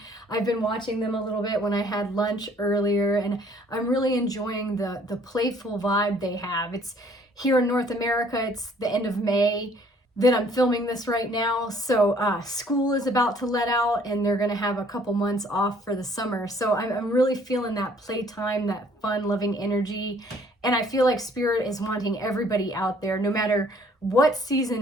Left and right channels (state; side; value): normal; both; correlation 0.59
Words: I've been watching them a little bit when I had lunch earlier, and I'm really enjoying the playful vibe they have. It's here in North America. It's the end of May that I'm filming this right now. So school is about to let out and they're gonna have a couple months off for the summer. So I'm really feeling that playtime, that fun, loving energy. And I feel like Spirit is wanting everybody out there, no matter what